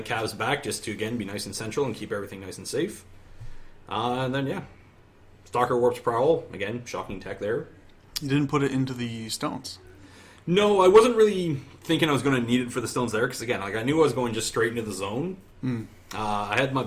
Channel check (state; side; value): identical; both; correlation 1.00